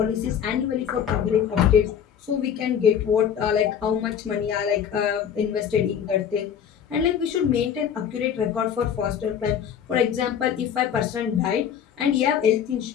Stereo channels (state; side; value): quieter; right; 8.4 dB